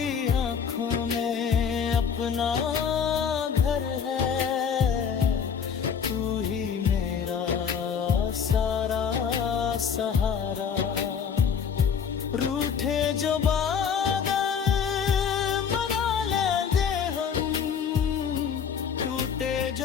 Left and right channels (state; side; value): quieter; right; 7.0 dB